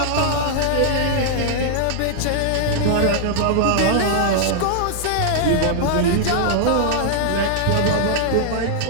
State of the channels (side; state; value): both; different; correlation -0.01